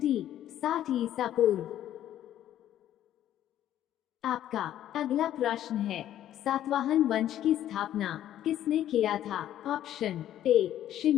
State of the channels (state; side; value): quieter; right; 11.8 dB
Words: 60 ईसा पूर्व। आपका अगला प्रश्न है, सातवाहन वंश की स्थापना किसने किया था? Option A